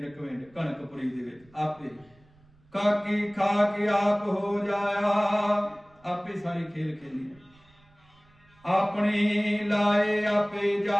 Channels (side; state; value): right; noise; rumble, 30 dB below the sound